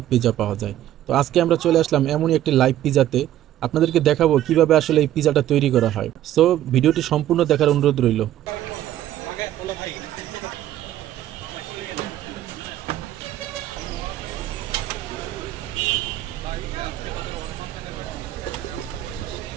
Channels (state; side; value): quieter; left; 12.7 dB